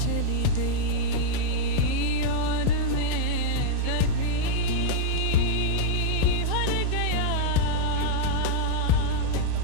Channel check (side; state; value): both; different; correlation -0.01